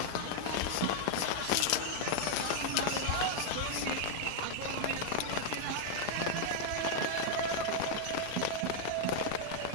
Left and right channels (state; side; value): different; both; correlation 0.00